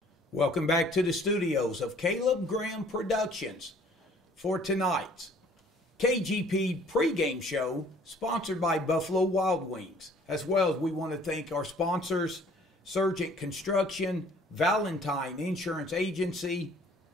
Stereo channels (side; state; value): both; normal; correlation 0.56